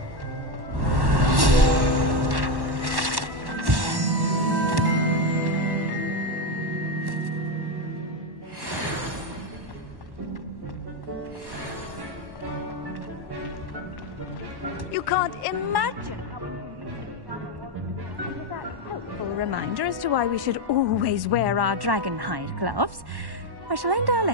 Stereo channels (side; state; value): left; late; 1.1 ms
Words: imagine how inconvenient travel was before. And with that helpful reminder as to why we should always wear our dragon hide gloves, I shall end our